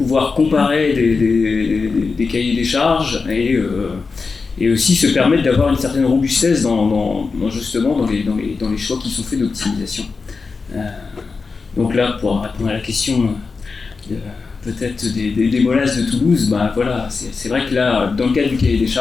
comparer des cahiers des charges et aussi se permettre d'avoir une certaine robustesse dans les choix qui sont faits d'optimisation. Donc là, pour répondre à la question peut-être des molasses de Toulouse, c'est vrai que là, dans le cadre du cahier des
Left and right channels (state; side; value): quieter; right; 4.5 dB